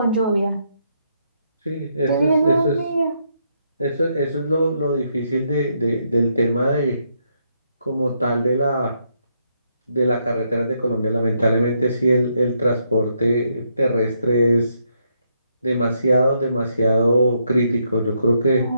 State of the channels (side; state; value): both; inverted; correlation -0.77